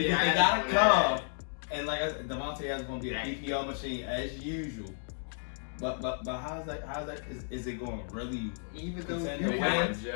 Adams gotta on come, that. and like Devontae is gonna be a PPR machine as usual. But how's that? Is it going really? Even though contend you to count, win?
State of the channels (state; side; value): silent; right; digital silence